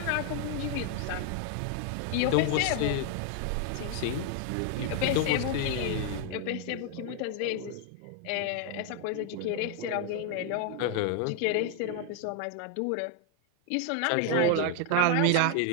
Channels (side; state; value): both; different; correlation 0.00